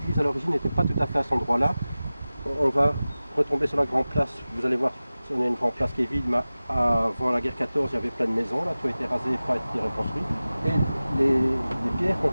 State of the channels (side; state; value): both; inverted; correlation -0.96